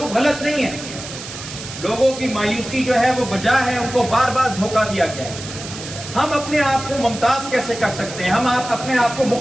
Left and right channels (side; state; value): right; noise; hiss, 11 dB below the sound